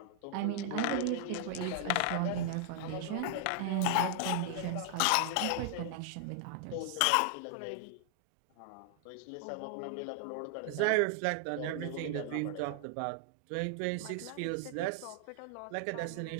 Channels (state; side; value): different; both; correlation -0.01